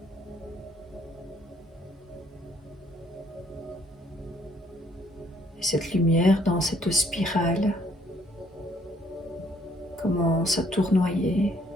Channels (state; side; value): normal; both; correlation 0.65